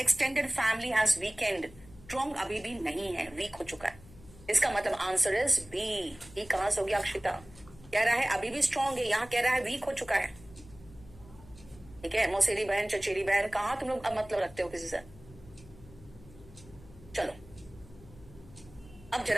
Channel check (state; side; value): noise; left; hum, 21 dB below the sound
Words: family has weekend, strong अभी भी नहीं है, वीक हो चुका है। इसका मतलब आंसर इज बी। ये कहां से हो गया अक्षिता? कह रहा है अभी भी स्ट्रॉन्ग है, यहां कह रहा है वीक हो चुका है, ठीक है। मौसेरी बहन, चचेरी बहन, कहां तुम लोग मतलब रखते हो किसी से? चलो अब